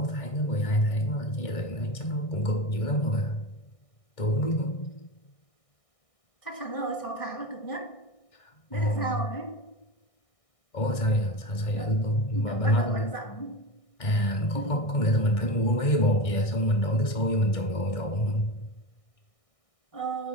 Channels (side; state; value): right; late; 1.6 ms